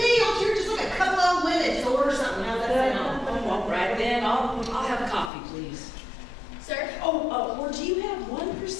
don't you just like a couple old women. Just order something. How's that sound? Oh, all right then. I'll have coffee, please. Sir? Oh, or do you have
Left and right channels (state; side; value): drops out; right; at 5.3 s